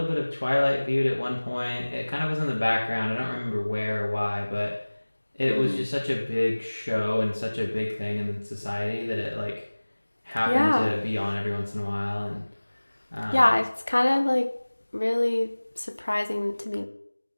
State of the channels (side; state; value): both; inverted; correlation -1.00